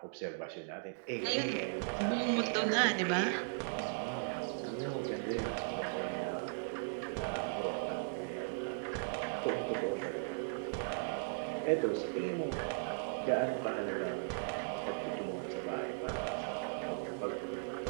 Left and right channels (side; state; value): left; silent; digital silence